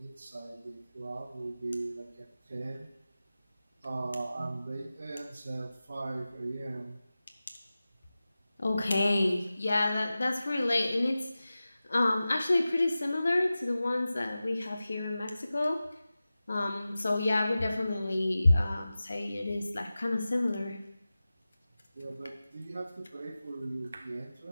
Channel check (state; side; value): inverted; both; correlation -0.95